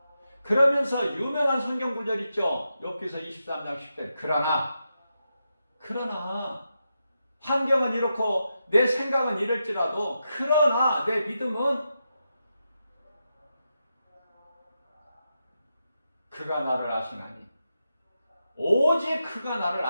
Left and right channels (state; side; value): inverted; both; correlation -0.87